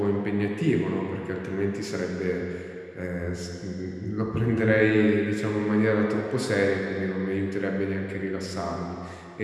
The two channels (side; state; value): both; identical; correlation 1.00